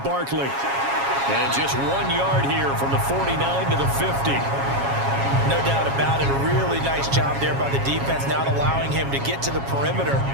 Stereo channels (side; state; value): left; late; 7.3 ms